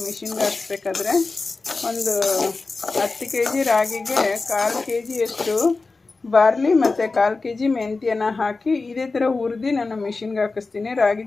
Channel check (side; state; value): right; quieter; 3.8 dB